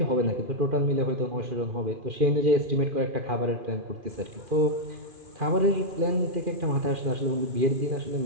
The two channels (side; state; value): left; late; 2.4 ms